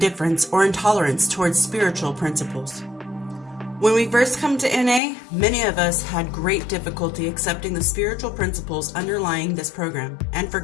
or intolerance towards spiritual principles. When we first come to NA, many of us had great difficulty accepting the spiritual principles underlying this program, and for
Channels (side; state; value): right; drops out; at 5.0 s